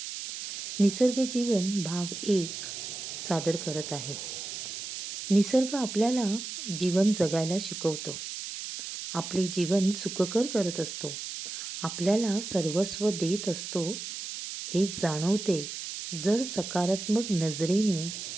निसर्ग जीवन भाग 1 सादर करत आहे. निसर्ग आपल्याला जीवन जगायला शिकवतो. आपले जीवन सुखकर करत असतो. आपल्याला सर्वस्व देत असतो हे जाणवते जर सकारात्मक नजरेने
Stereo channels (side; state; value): right; noise; hiss, 7 dB below the sound